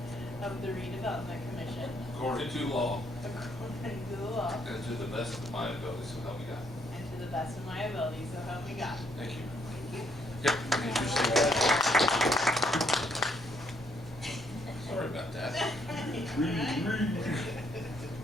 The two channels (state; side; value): normal; both; correlation 0.70